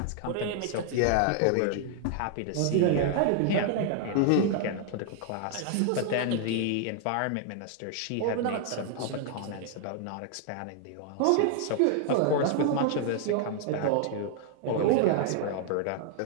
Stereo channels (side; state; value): both; different; correlation 0.00